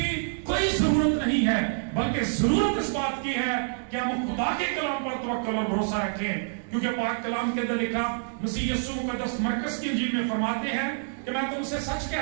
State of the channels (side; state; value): left; silent; digital silence